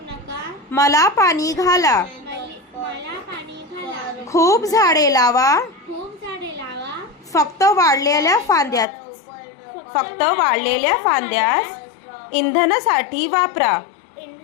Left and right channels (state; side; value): drops out; right; at 8.8 s